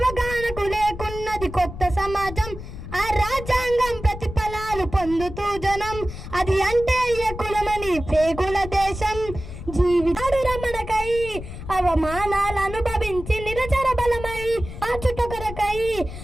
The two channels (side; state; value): left; noise; rumble, 11 dB below the sound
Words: లేకున్నది కొత్త సమాజం. ఆ రాజ్యాంగం ప్రతిఫలాలు పొందుతూ జనం, అది అంటే ఏ కులమని పేగుల దేశం. జీవితాడు రమణకై అవమానాలు అనుభవించి నిరచర బలమై ఆచుట కొరకై